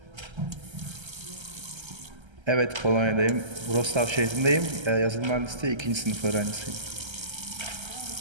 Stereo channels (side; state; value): left; late; 1.3 ms